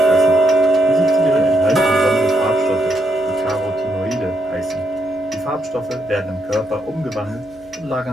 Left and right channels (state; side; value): noise; right; hum, 28 dB below the sound